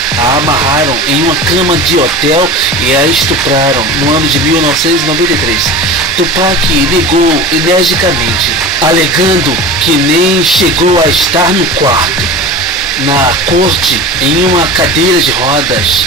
a amarraram em uma cama de hotel e a estupraram no ano de 1993. Tupac negou energicamente, alegando que nem chegou a estar no quarto. Na corte, em uma cadeira de rodas,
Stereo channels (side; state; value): both; normal; correlation 0.32